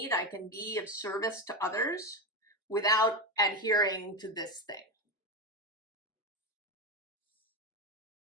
I can be of service to others without adhering to this thing.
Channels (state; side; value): normal; both; correlation 0.12